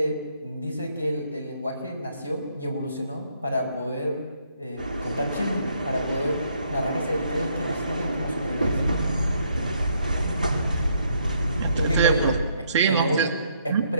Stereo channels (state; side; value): inverted; both; correlation -0.70